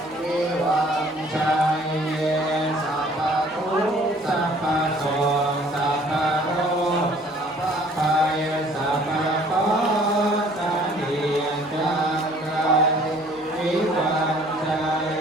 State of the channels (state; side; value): normal; both; correlation 0.56